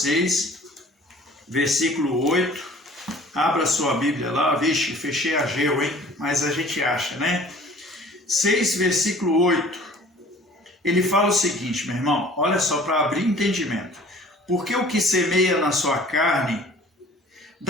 6, versículo 8. Abra sua Bíblia lá. Vixe, fechei Ageu, hein? Mas a gente acha, né? 6, versículo 8. Ele fala o seguinte, meu irmão. Olha só, para abrir entendimento. Porque o que semeia na sua carne,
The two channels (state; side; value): normal; both; correlation 0.49